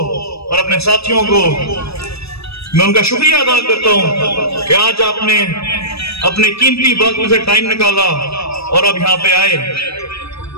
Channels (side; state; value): right; late; 0.78 ms